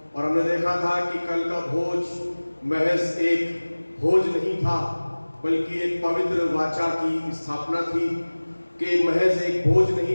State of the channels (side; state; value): both; inverted; correlation -1.00